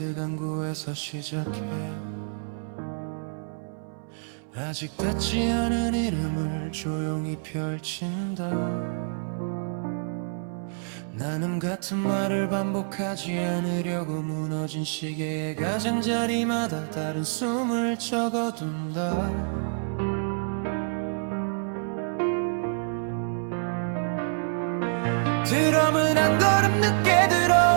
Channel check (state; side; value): silent; left; 60 dB below the other